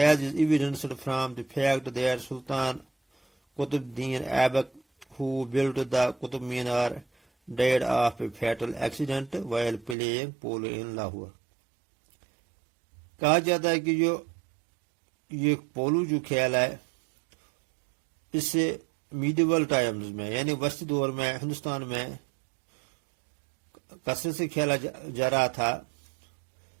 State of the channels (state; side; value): drops out; left; at 10.0 s